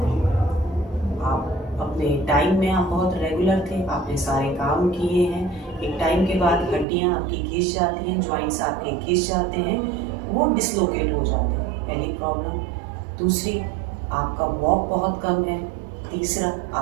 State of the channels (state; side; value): drops out; left; at 6.9 s